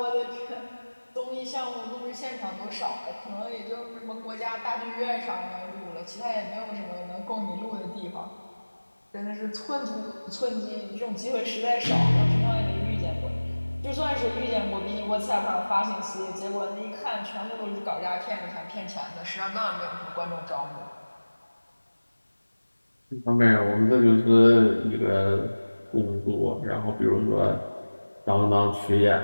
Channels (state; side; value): inverted; both; correlation -1.00